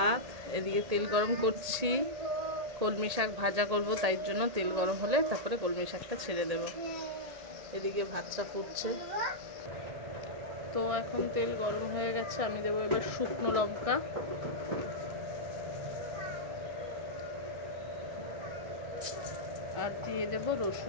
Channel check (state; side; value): late; left; 1.8 ms